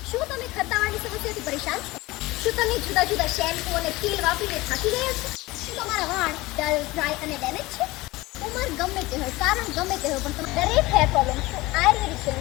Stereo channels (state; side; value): quieter; right; 20.5 dB